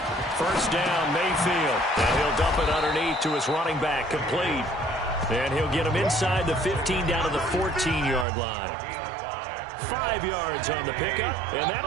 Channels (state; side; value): drops out; left; at 8.2 s